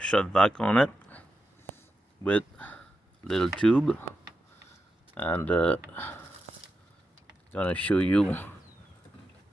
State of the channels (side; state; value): both; normal; correlation 0.88